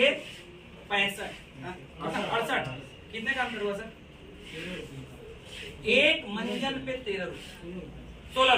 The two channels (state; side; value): identical; both; correlation 1.00